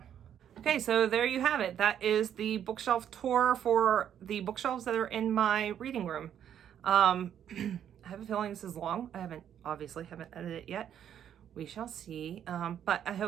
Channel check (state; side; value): quieter; left; 9.6 dB